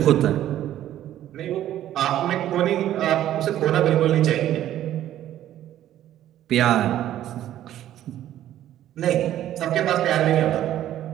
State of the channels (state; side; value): quieter; left; 12.3 dB